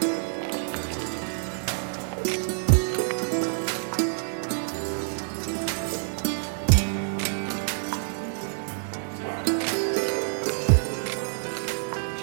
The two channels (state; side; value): silent; left; 60 dB below the other